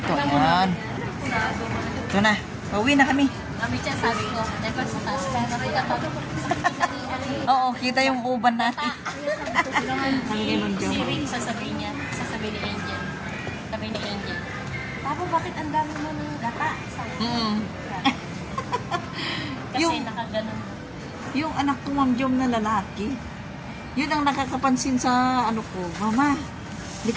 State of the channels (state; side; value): identical; both; correlation 1.00